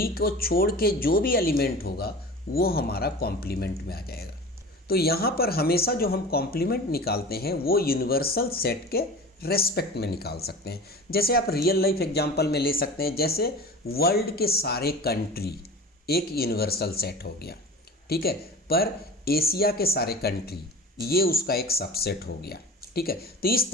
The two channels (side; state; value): both; normal; correlation 0.36